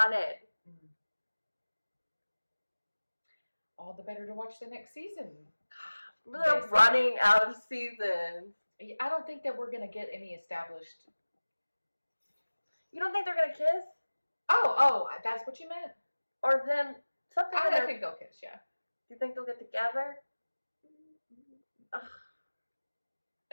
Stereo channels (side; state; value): both; inverted; correlation -1.00